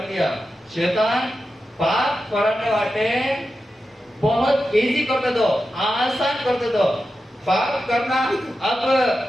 दिया। शैतान पाप कराने वाले बहुत इजी करते दो, आसान करते दो। पाप करना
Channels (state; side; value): normal; both; correlation 0.91